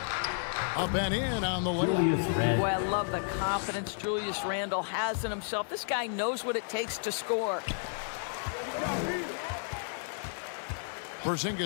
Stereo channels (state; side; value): silent; right; digital silence